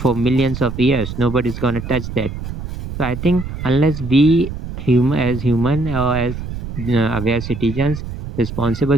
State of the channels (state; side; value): noise; right; rumble, 8 dB below the sound